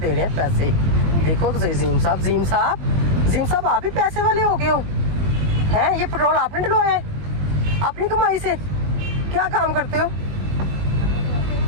दे रहे हैं पैसे, देखो तो सही। जीम साहब आप भी पैसे वाले हो गए हो हैं? ये पेट्रोल आपने डलवाया है अपनी कमाई से? क्या काम करते हो?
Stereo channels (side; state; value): left; late; 20 ms